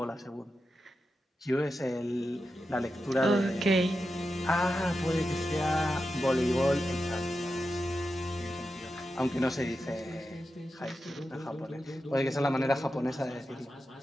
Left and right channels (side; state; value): both; normal; correlation 0.90